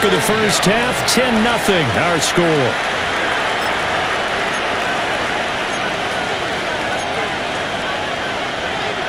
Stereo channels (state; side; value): identical; both; correlation 1.00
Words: of the first half. 10-0 our score.